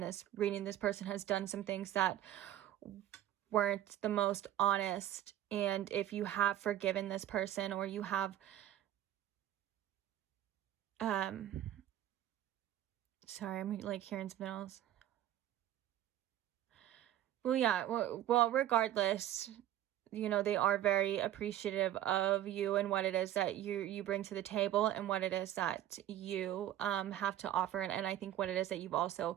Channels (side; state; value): left; quieter; 12.2 dB